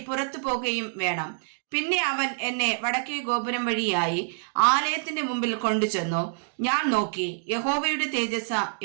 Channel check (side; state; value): left; silent; digital silence